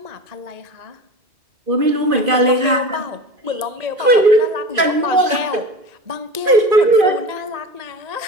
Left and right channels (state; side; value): late; left; 2.5 ms